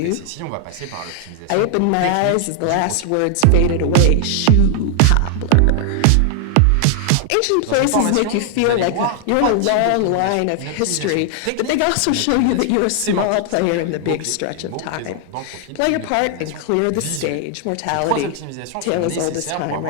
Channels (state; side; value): different; both; correlation 0.00